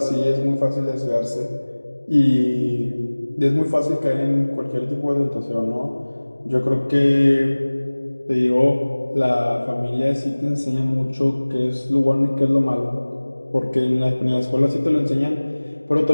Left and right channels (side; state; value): both; inverted; correlation -1.00